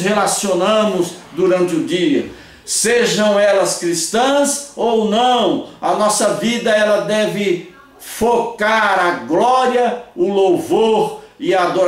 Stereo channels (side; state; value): both; identical; correlation 1.00